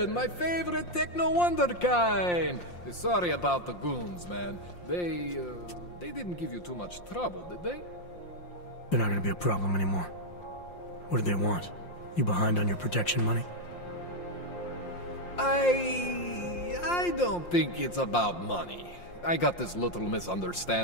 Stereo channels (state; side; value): late; right; 5.7 ms